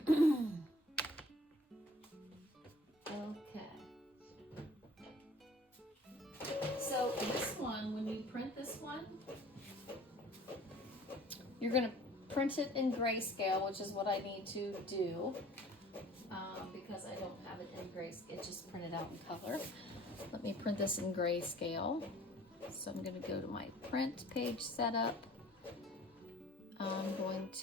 Okay. So this one, when you print this one, you're going to print it in grayscale, which is what I need to do because I don't have it in grayscale. It's just printed out in color. Let me print this in grayscale. So I'm going to go to my print page setup. I'm going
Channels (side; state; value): both; normal; correlation 0.51